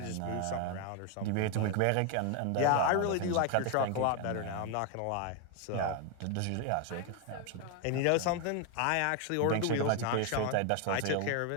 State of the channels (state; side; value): different; both; correlation 0.01